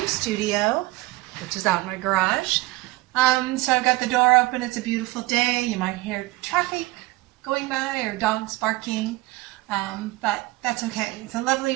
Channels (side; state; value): left; quieter; 20.2 dB